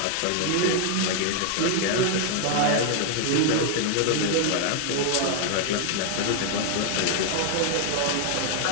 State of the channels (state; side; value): different; both; correlation 0.00